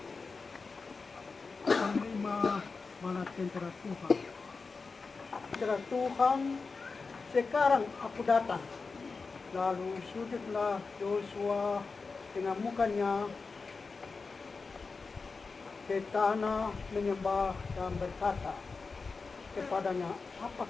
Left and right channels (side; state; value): right; quieter; 4.4 dB